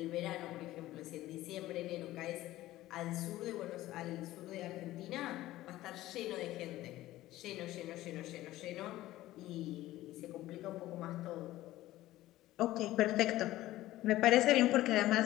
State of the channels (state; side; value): quieter; right; 15.9 dB